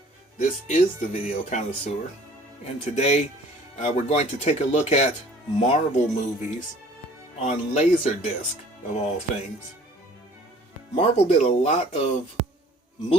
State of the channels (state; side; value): normal; both; correlation 0.52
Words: This is the Video Connoisseur, and today we're going to take a look at Marvel movies on Laserdisc, of all things. Marvel did a lot of